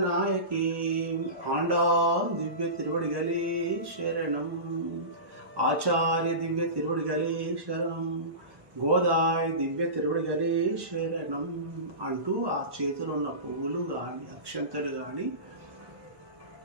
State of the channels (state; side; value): late; left; 1.1 ms